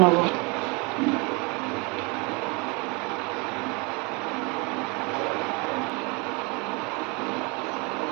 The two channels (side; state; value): left; quieter; 29.7 dB